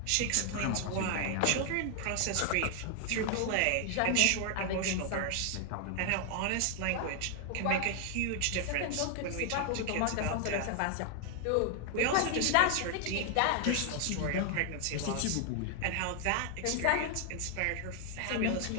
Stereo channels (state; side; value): different; both; correlation 0.00